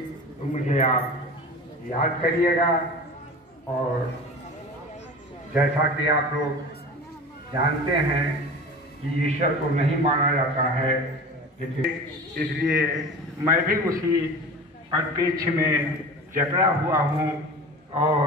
तो मुझे आप याद करिएगा। और जैसा कि आप लोग जानते हैं कि ईश्वर को नहीं माना जाता है, इसलिए मैं भी उसी परिप्रेक्ष्य में जकड़ा हुआ हूँ और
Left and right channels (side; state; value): both; normal; correlation 0.34